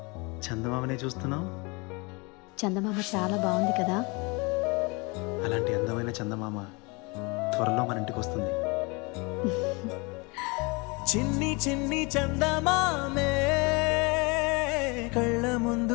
చందమామనే చూస్తున్నావు? చందమామ చాలా బాగుంది కదా. అలాంటి అందమైన చందమామ త్వరలో మన ఇంటికి వస్తుంది. చిన్ని చిన్ని చందమామే కళ్ళ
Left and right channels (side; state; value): right; quieter; 28.1 dB